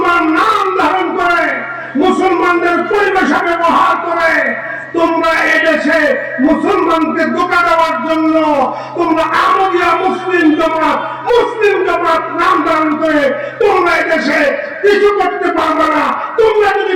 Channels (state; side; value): identical; both; correlation 1.00